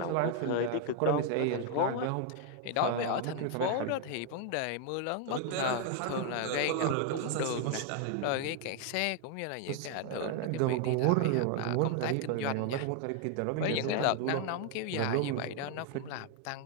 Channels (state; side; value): different; both; correlation 0.00